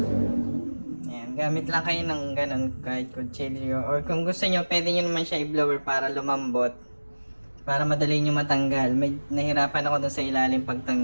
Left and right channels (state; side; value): inverted; both; correlation -1.00